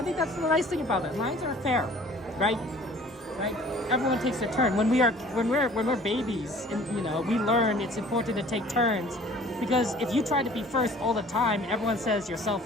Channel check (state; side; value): normal; both; correlation 0.50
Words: think that's the nice thing about it. Lines are fair, right? Right? Everyone takes a turn. When we're babies, and you know, we learn it's important to take turns, because if you try to be first all the time, everyone says you're